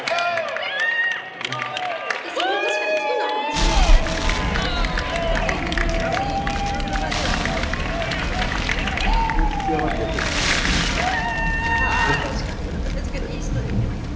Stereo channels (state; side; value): identical; both; correlation 1.00